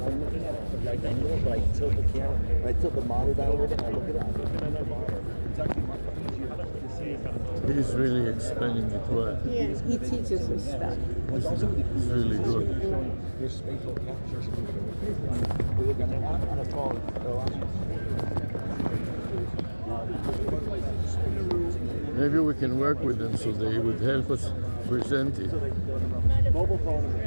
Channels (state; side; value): inverted; both; correlation -1.00